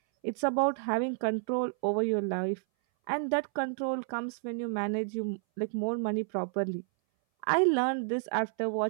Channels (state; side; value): silent; left; 57 dB below the other